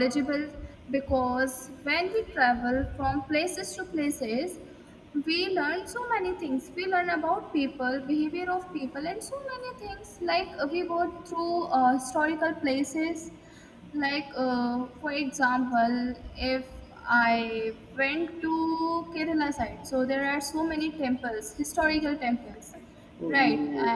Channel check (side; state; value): both; identical; correlation 1.00